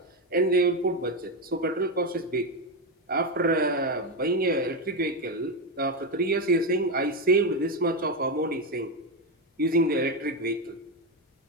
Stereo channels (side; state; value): both; normal; correlation 0.10